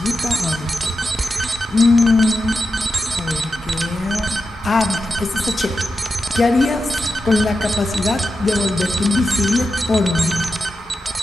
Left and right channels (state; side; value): normal; both; correlation 0.90